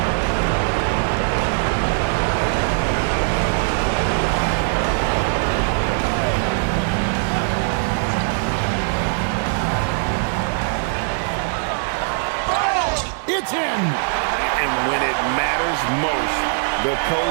It's in. And when it matters most, the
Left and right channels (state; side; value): silent; left; digital silence